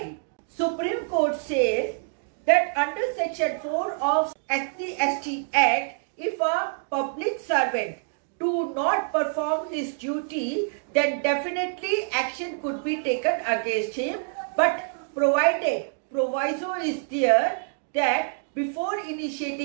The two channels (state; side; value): silent; left; digital silence